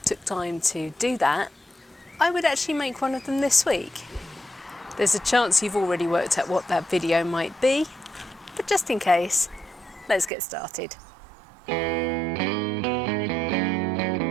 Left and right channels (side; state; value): left; drops out; at 10.3 s